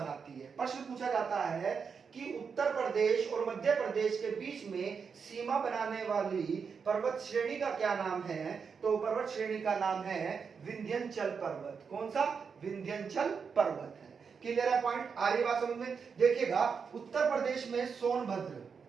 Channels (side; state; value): left; quieter; 5.9 dB